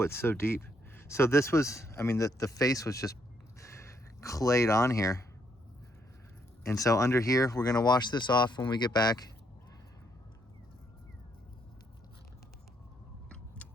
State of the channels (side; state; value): both; normal; correlation 0.73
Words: it's so deep. So this was, I mean, the face was just clayed on here. And so under here, we're gonna wash this off when we get back.